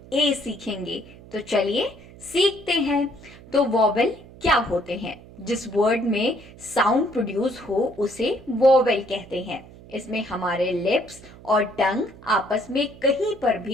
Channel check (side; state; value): right; noise; hum, 20 dB below the sound